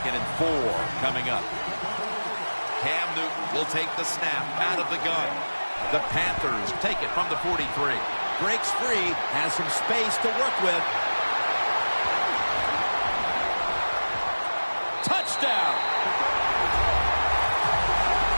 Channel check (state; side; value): inverted; both; correlation -1.00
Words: and 4 coming up. Cam Newton will take the snap out of the gun. The Panthers take it from the 43. Breaks free, has some space to work with. Touchdown!